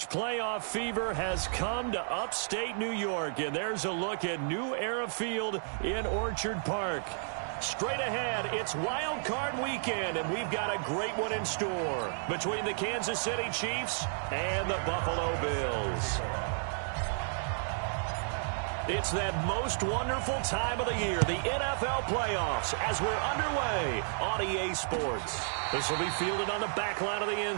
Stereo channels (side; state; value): left; silent; digital silence